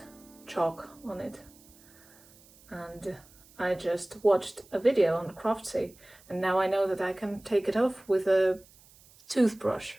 chalk on it. And I just watched a video on Craftsy, and now I know that I can take it off with a toothbrush.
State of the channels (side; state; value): right; noise; hiss, 26 dB below the sound